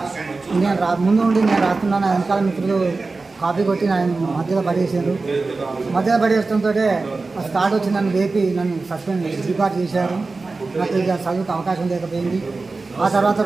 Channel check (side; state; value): left; quieter; 3.8 dB